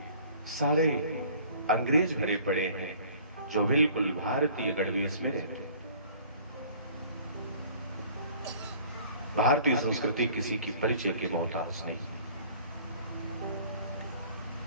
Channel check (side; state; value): both; inverted; correlation -0.51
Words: सारे अंग्रेज भरे पड़े हैं जो बिल्कुल भारतीय गणवेश में रहते हैं। भारतीय संस्कृति किसी की परिचय के मोहताज नहीं।